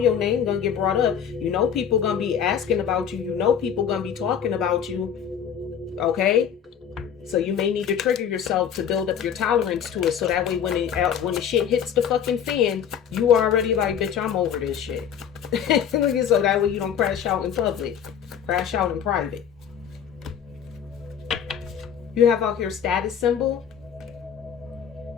name gonna get brought up. You know people gonna be asking about you. You know people gonna be talking about you. Okay? So you may need to trigger yourself to build up your tolerance to it. So that way when the shit hits the fucking fan, you are already like, bitch, I'm over this shit. So that way you don't crash out in public. Crash out in private. You have out here status symbol.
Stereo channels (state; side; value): quieter; right; 8.3 dB